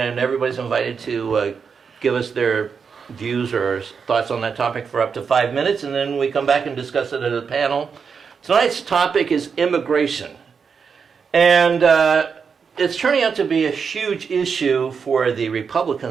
everybody's invited to give us their views or thoughts on that topic for up to 5 minutes, and then we come back and discuss it as a panel. Tonight's topic is immigration, and it's turning out to be a huge issue for the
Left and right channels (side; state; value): left; quieter; 6.0 dB